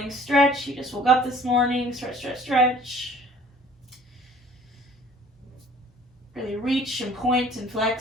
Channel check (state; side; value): normal; both; correlation 0.52